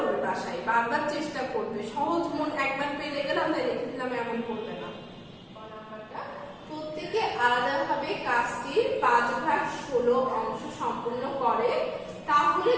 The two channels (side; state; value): both; identical; correlation 1.00